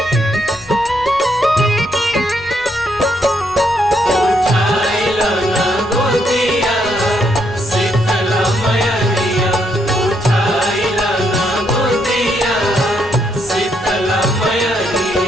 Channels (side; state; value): left; noise; rumble, 21 dB below the sound